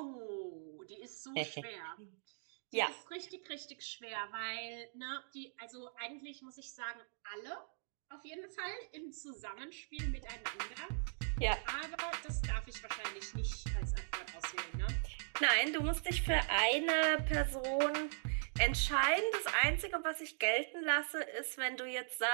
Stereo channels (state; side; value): silent; left; digital silence